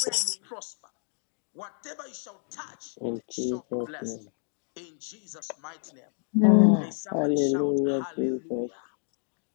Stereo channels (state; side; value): silent; right; digital silence